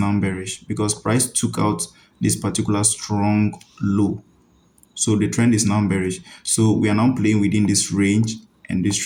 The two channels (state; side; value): identical; both; correlation 1.00